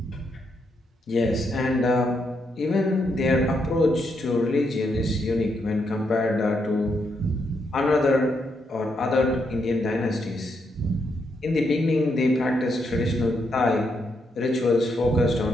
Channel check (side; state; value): both; normal; correlation 0.79